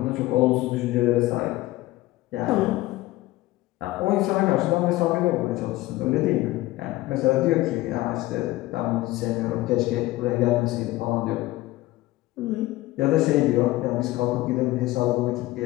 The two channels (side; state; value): right; quieter; 17.9 dB